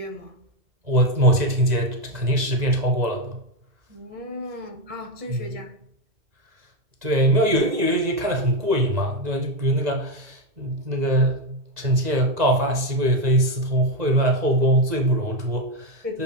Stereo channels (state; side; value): late; left; 2.0 ms